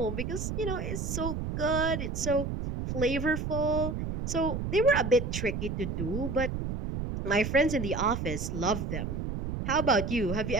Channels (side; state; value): right; noise; rumble, 4 dB below the sound